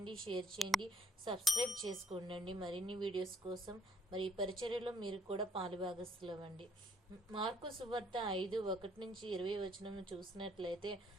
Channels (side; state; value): both; normal; correlation 0.66